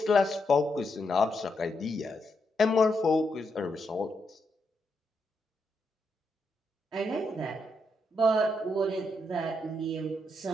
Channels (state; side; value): normal; both; correlation 0.81